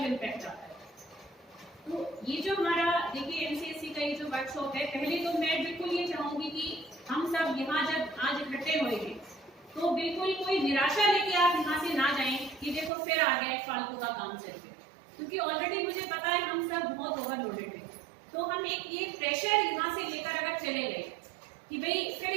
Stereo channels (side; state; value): left; drops out; at 12.9 s